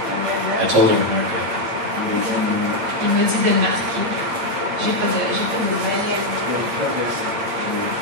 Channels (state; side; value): late; left; 8.7 ms